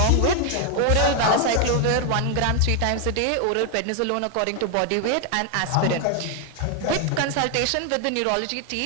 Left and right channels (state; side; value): different; both; correlation 0.01